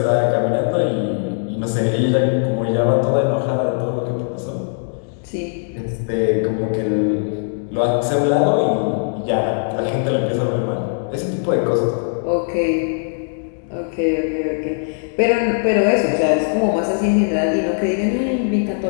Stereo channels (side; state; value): right; silent; digital silence